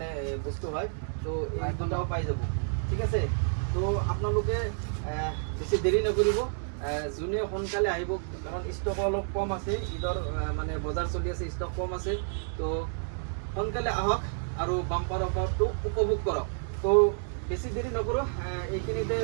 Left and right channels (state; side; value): silent; left; digital silence